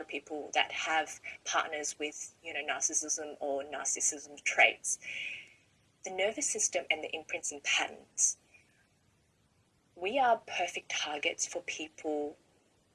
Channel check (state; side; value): identical; both; correlation 1.00